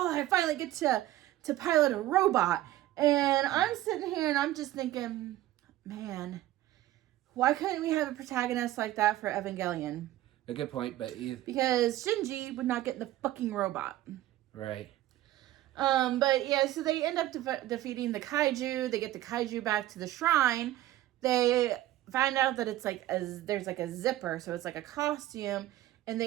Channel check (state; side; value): quieter; left; 14.8 dB